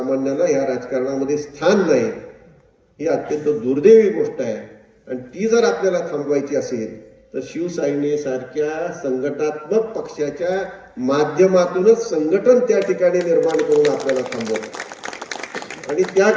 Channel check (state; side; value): identical; both; correlation 1.00